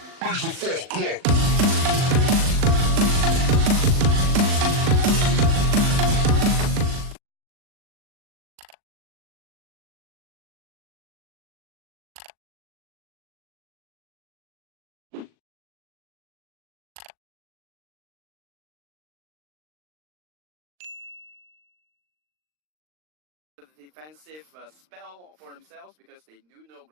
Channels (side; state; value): left; late; 39 ms